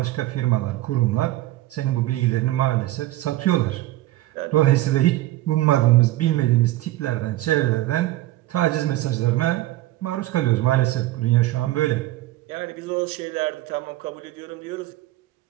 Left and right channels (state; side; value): quieter; left; 16.1 dB